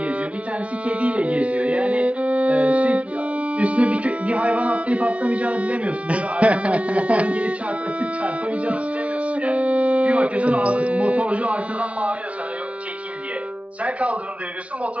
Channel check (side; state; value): left; late; 0.064 ms